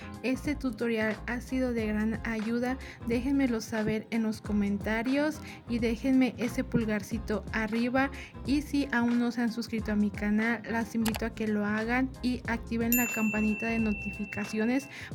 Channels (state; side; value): identical; both; correlation 1.00